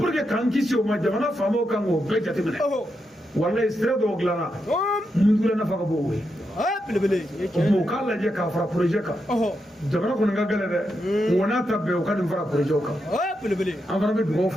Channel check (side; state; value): both; normal; correlation 0.84